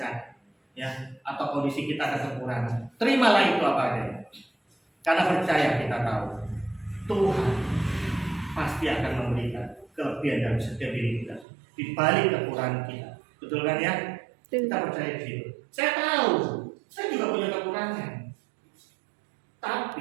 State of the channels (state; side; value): drops out; left; at 11.5 s